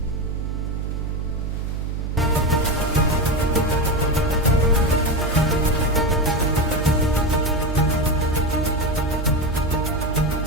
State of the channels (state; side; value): noise; right; hum, 3 dB below the sound